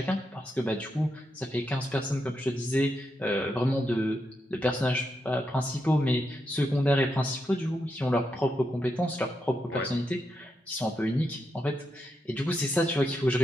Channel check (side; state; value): both; normal; correlation 0.84